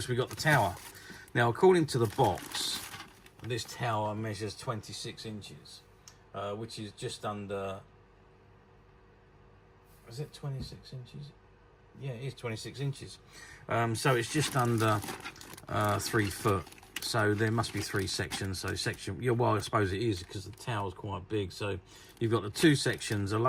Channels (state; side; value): identical; both; correlation 1.00